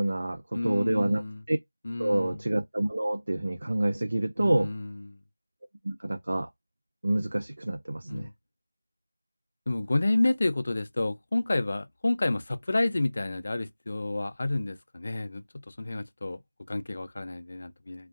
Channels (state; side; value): inverted; both; correlation -0.98